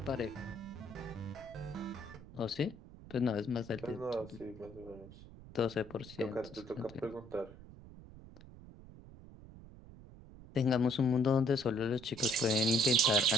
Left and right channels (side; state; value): right; noise; rumble, 17 dB below the sound